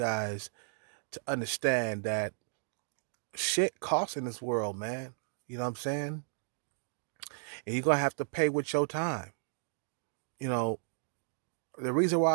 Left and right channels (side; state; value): left; silent; digital silence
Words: to understand that shit costs in this world, man. You know what I'm saying? And you're going to have to pay with your time. You know, the reason